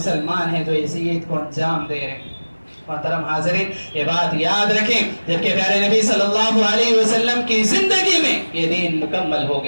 ہیں جو اس عید کو انجام دے رہے ہیں۔ محترم حاضرین، یہ بات یاد رکھیں، جبکہ پیارے نبی صلی اللہ علیہ وسلم کی زندگی میں یہ دین مکمل ہو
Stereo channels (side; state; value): both; inverted; correlation -1.00